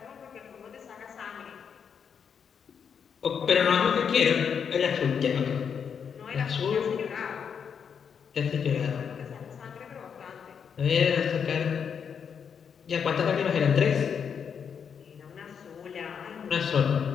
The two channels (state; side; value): quieter; right; 7.0 dB